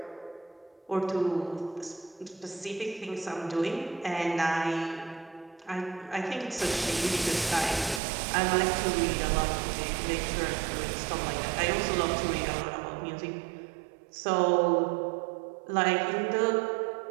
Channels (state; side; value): drops out; left; at 8.0 s